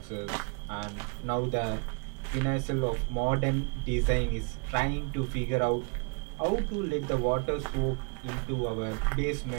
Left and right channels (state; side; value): quieter; left; 36.7 dB